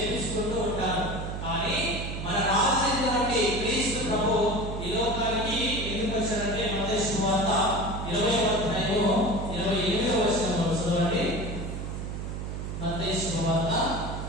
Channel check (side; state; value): right; noise; hum, 5 dB below the sound